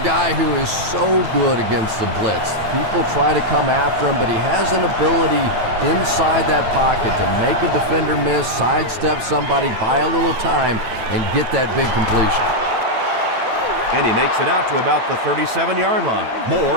who is so good against the blitz. People try to come after him, but he has an ability inside that pocket to make a defender miss, sidestep somebody, buy a little time, and get that big completion. And he makes it out to about the 37-yard line.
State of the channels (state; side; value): late; left; 9.1 ms